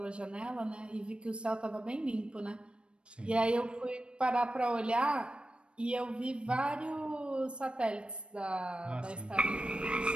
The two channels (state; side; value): late; left; 0.057 ms